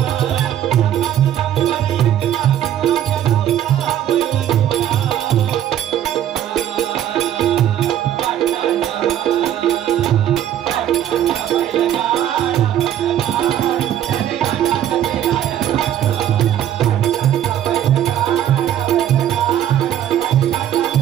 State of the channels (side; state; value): left; quieter; 11.1 dB